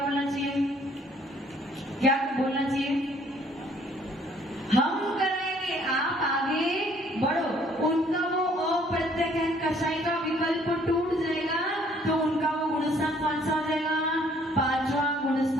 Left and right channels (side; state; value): both; normal; correlation 0.61